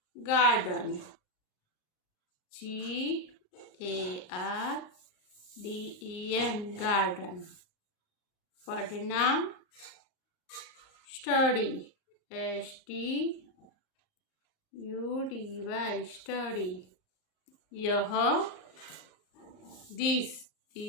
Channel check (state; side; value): late; right; 38 ms